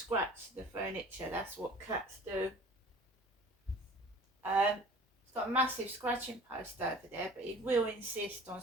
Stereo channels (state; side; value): normal; both; correlation 0.46